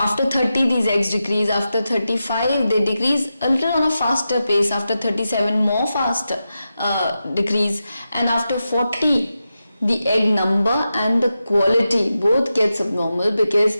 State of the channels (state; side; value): inverted; both; correlation -0.90